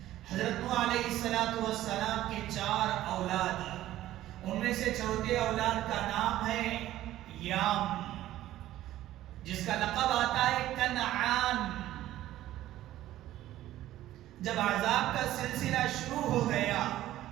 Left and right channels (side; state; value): left; quieter; 14.2 dB